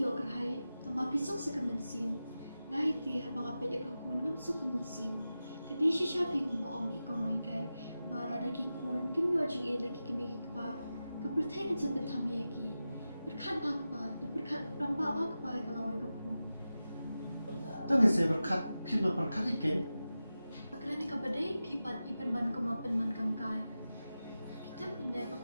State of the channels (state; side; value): inverted; both; correlation -0.93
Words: yo kerhay, tama pisok sa kamansim. Ngay ti habang apel ikakun ngam sa kamansim. Kedai siya kung maong ikaw ngay kay, para lagi kun, kim yo jing lagi kami pa, kapertayan sa pentamiyaki. Berkat ba ka pa, na berkat ramba ba ka pa kalaway ka kun. Tapi saya berkat, kena berkat ikan. Pagkarani ka ba day, pipat ipan ban kumapan man kang kay. Kita pinday